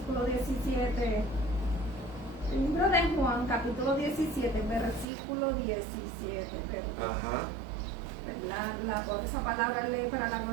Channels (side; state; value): left; drops out; at 5.1 s